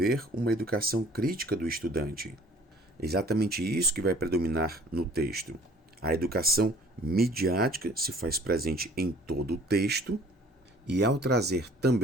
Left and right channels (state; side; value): normal; both; correlation 0.52